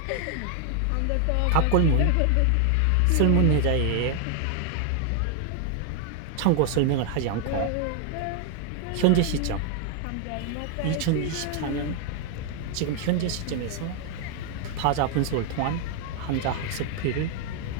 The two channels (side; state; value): both; different; correlation 0.00